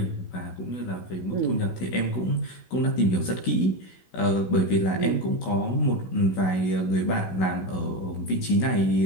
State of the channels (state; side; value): late; right; 16 ms